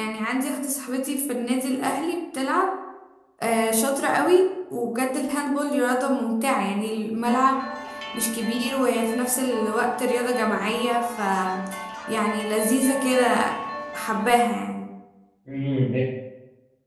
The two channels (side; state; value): both; identical; correlation 1.00